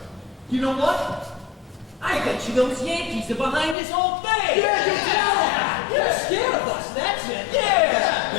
You know what? I bet you those Yankees are behind this whole thing. You're scared of us, that's it.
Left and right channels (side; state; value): right; drops out; at 3.8 s